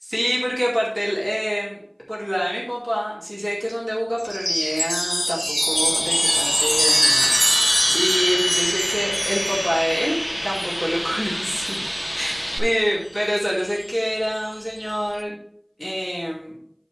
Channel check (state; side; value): identical; both; correlation 1.00